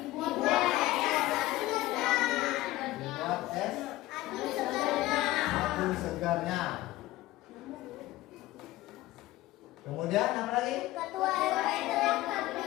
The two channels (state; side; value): quieter; right; 17.2 dB